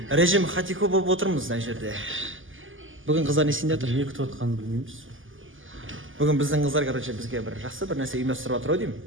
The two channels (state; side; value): late; left; 0.58 ms